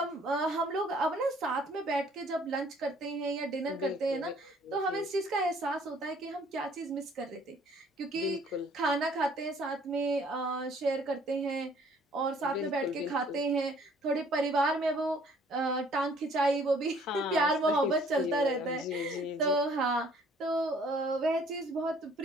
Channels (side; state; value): both; normal; correlation 0.58